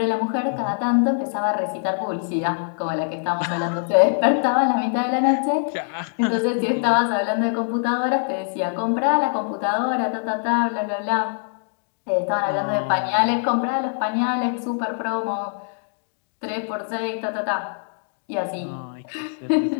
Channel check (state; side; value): silent; right; digital silence